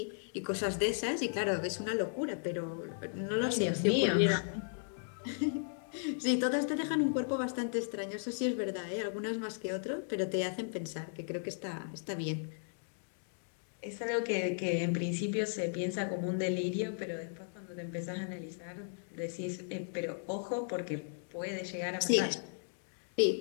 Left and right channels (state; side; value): silent; right; digital silence